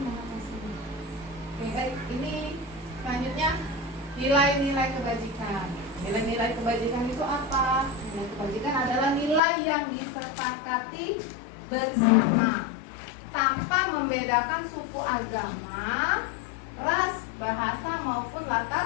mengatasinya. Oke, baik. Ini selanjutnya nilai-nilai kebajikan. Nilai-nilai kebajikan itu apa? Nilai kebajikan adalah nilai yang disepakati bersama tanpa membedakan suku, agama, ras, bahasa maupun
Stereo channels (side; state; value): right; drops out; at 9.4 s